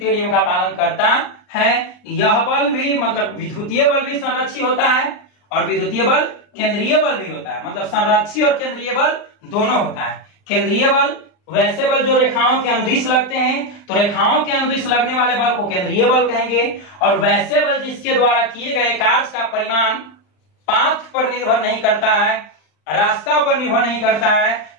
नियम का पालन करता है। यह बल भी मतलब विद्युतीय बल भी संरक्षी होता है और विद्युतीय बल केंद्रीय बल भी होता है। मतलब संरक्षी और केंद्रीय बल दोनों होता है। केंद्रीय बल वैसे बल जो रेखाओं के अनुदिश लगते हैं, तो रेखाओं के अनुदिश लगने वाले बल को केंद्रीय बल कहेंगे। और वैसे बल जिसके द्वारा किए गए कार्य का परिमाण पाथ पर निर्भर नहीं करता है, रास्ता पर निर्भर नहीं करता है,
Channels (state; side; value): late; right; 39 ms